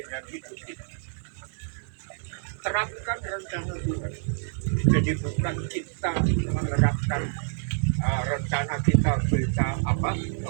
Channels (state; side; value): silent; left; digital silence